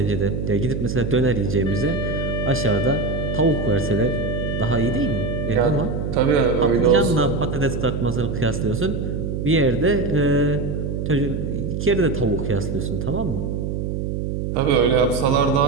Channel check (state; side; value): noise; right; hum, 3 dB below the sound